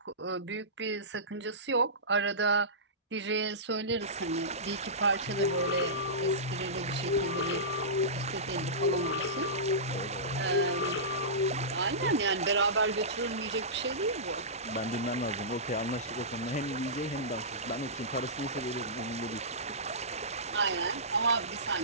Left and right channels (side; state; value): both; normal; correlation -0.19